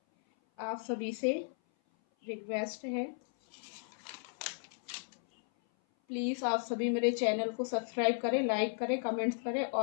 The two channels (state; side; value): silent; right; 54 dB below the other